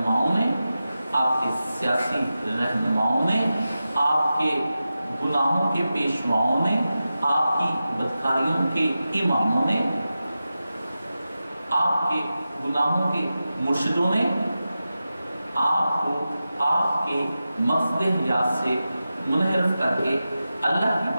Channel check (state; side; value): inverted; both; correlation -0.93